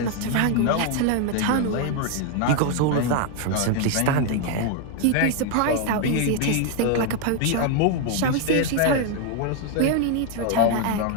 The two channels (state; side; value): different; both; correlation 0.01